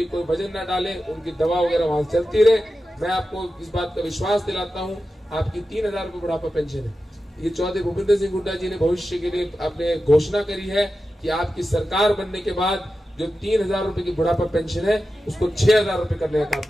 कोई वजन ना डाले, उनकी दवा वगैरह वहां चलती रहे। मैं आपको इस बात का विश्वास दिलाता हूँ, आपकी 3000 रुपए बुढ़ापा पेंशन है। ये चौधरी भूपेंद्र सिंह हुड्डा जी ने भविष्य के लिए आपने घोषणा करी है कि आपकी सरकार बनने के बाद जो 3000 रुपए की बुढ़ापा पेंशन है उसको 6000 रुपए करने का काम।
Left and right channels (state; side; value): normal; both; correlation 0.92